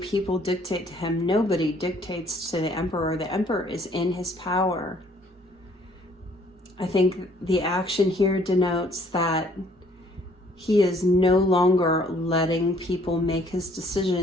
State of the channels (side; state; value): both; normal; correlation 0.61